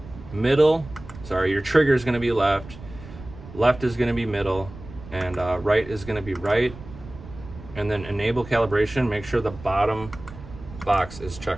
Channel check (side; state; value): right; noise; rumble, 15 dB below the sound